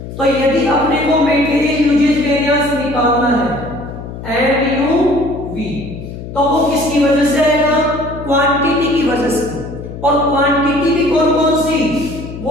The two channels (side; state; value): left; noise; hum, 11 dB below the sound